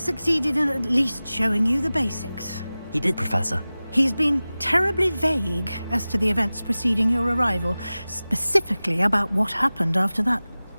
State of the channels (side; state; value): both; inverted; correlation -0.97